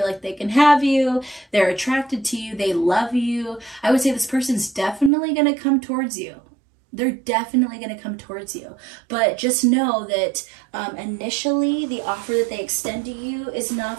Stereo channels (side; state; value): left; drops out; at 5.1 s